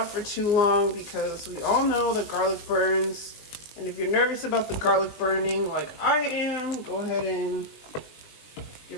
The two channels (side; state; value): right; late; 20 ms